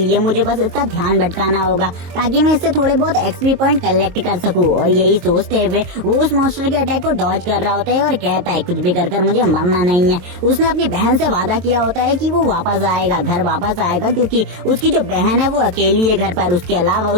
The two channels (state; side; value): late; left; 22 ms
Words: मुझे बस इसका ध्यान भटकाना होगा ताकि मैं इससे थोड़े बहुत एक्सपी पॉइंट कलेक्ट कर सकूं। और यही सोचते हुए वो उस मॉन्स्टर के अटैक को डॉज कर रहा होता है और कहता है कुछ भी कर मुझे मरना नहीं है। उसने अपनी बहन से वादा किया होता है कि वो वापस आएगा, घर वापस आएगा, क्योंकि उसकी जो बहन है वो अकेली है घर पर, उसके अलावा